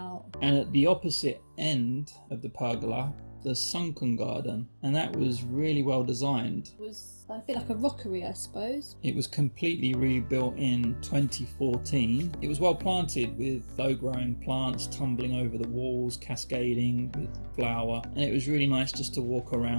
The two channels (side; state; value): both; inverted; correlation -1.00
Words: And at the opposite end of the pergola, the Sunken Garden, and that was really well designed. It was a bit like a rockery, I suppose. It was completely rebuilt in 2014. It was well planted with low-growing plants tumbling over the walls, cascading with flower, and it was really nice just to walk